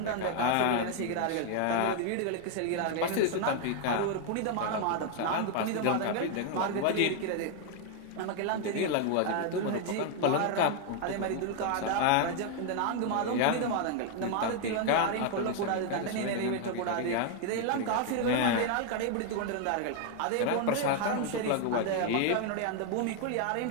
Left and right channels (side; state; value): both; different; correlation 0.00